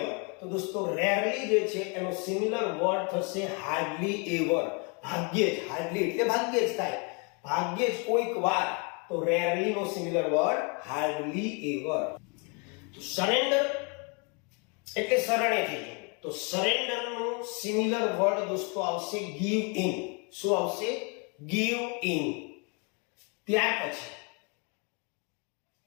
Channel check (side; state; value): right; quieter; 33.4 dB